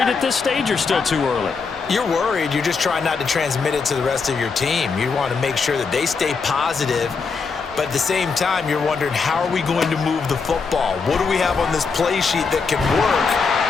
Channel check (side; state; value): right; quieter; 5.0 dB